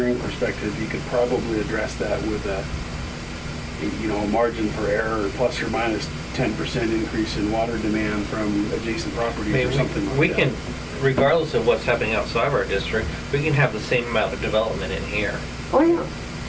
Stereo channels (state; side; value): identical; both; correlation 1.00